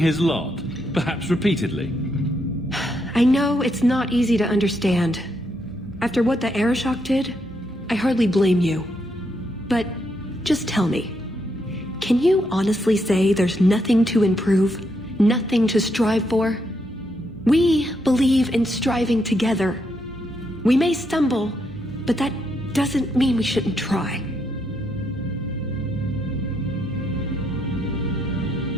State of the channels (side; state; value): both; normal; correlation 0.78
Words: lot, perhaps repeatedly? I know it's not easy to understand. After what the Arishok did, I hardly blame you. But just tell me, can you honestly say there's nothing to improve? Nothing to strive for? We believe in striving together. We may stumble, but that doesn't mean we shouldn't try.